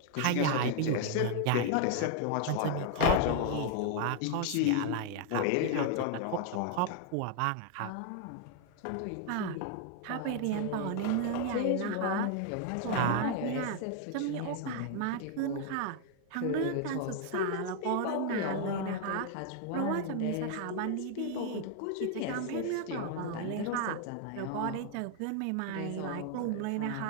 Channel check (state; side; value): different; both; correlation 0.00